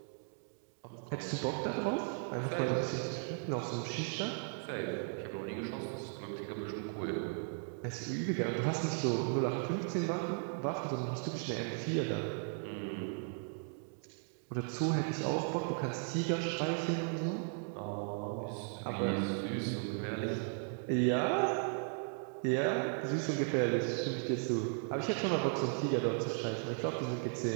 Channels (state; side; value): silent; left; 53 dB below the other